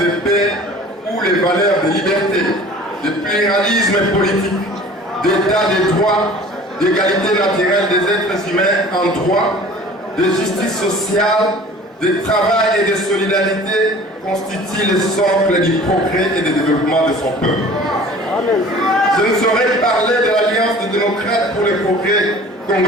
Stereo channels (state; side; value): normal; both; correlation 0.46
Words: de paix où les valeurs de liberté, de pluralisme politique, d'état de droit, d'égalité naturelle des êtres humains en droit, de justice sociale, de travail et de solidarité constituent le socle du progrès et du développement de son peuple. Je ne saurais parler de l'Alliance des démocrates pour le progrès